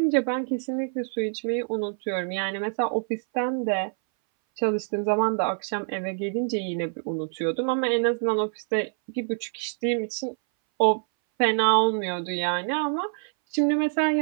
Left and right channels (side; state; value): left; silent; 59 dB below the other